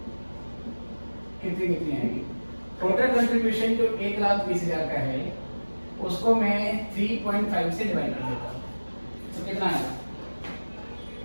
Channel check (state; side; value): inverted; both; correlation -1.00